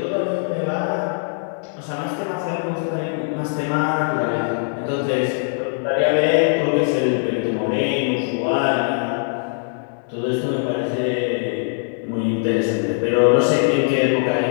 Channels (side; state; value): right; silent; 65 dB below the other